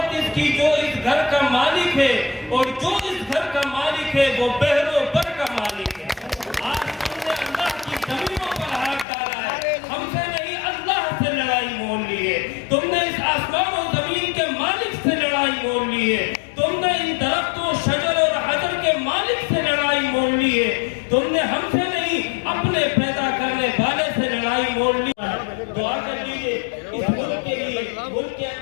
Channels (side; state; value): right; drops out; at 9.1 s